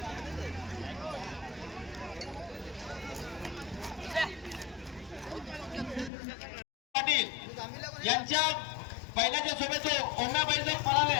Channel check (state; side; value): drops out; right; at 6.1 s